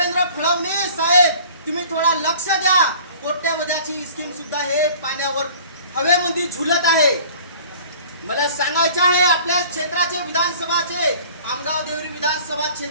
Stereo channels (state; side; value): inverted; both; correlation -0.48